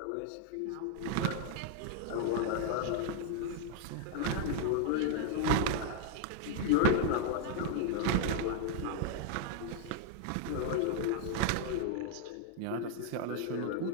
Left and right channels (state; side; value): different; both; correlation 0.00